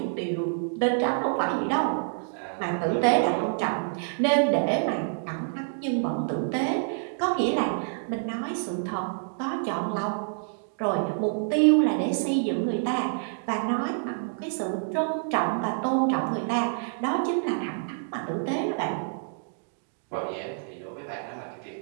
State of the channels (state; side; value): silent; left; digital silence